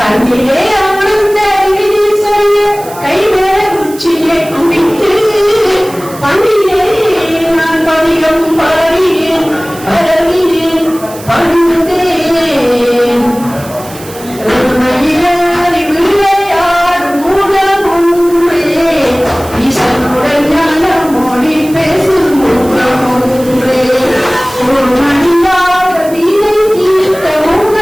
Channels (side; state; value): right; noise; hiss, 17 dB below the sound